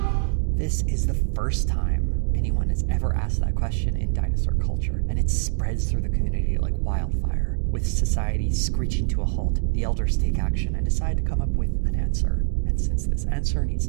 This is the first time anyone has ever asked that question in dinosaur culture, and it spreads through the community like wildfire. With society screeching to a halt, the elders take action and decide to come up with an answer. And since this answer needs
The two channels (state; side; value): silent; left; digital silence